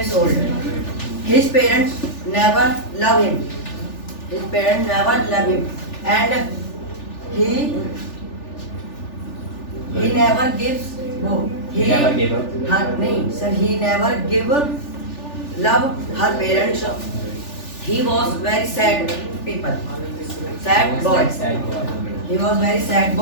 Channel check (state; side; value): late; right; 3.4 ms